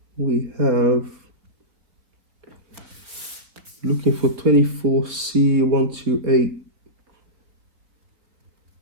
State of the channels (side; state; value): left; late; 3.9 ms